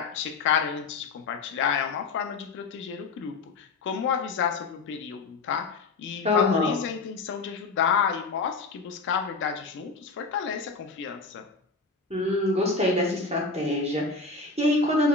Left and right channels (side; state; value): right; quieter; 4.0 dB